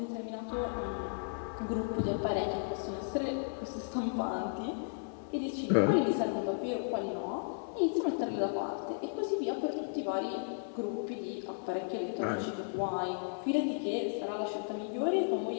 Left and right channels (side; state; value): right; silent; 55 dB below the other